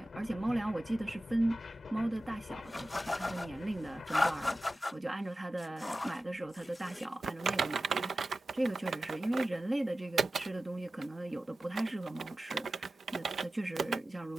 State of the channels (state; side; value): normal; both; correlation 0.95